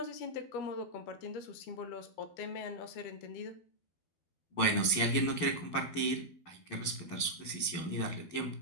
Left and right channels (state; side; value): late; right; 11 ms